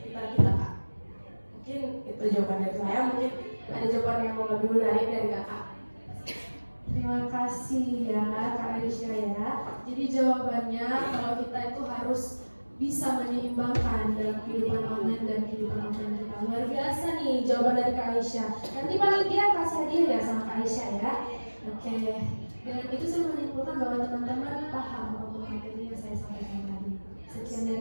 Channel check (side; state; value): both; inverted; correlation -1.00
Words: kita, Kak. Mungkin itu jawaban dari saya, mungkin ada jawaban yang lebih menarik dari kakak. Terima kasih ya Kak Aisyah ya. Jadi jawabannya kalau kita itu harus bisa menyeimbangkan dalam kehidupan online dan kehidupan offline kita. Luar biasa nih jawaban dari Kak Aisyah. Nanti panitia kasih hadiah ya sama Kak Aisyah ya. Oke. Dan itu saya menyimpulkan bahwa teman-teman paham untuk materi yang saya sampaikan tadi. Sekian